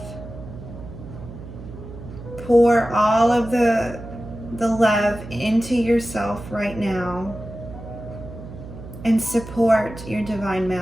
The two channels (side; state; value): right; noise; hum, 13 dB below the sound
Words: Pour all of the love into yourself right now and support your divine